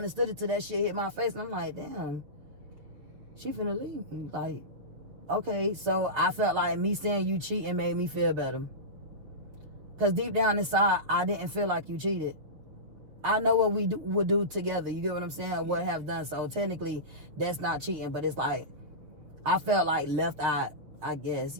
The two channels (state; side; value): late; left; 6.7 ms